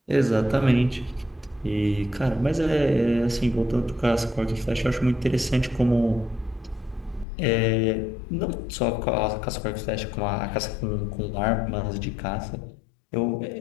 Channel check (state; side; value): drops out; right; at 7.2 s